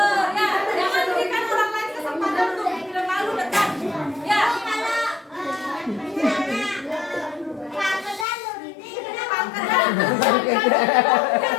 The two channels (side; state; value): right; drops out; at 8.2 s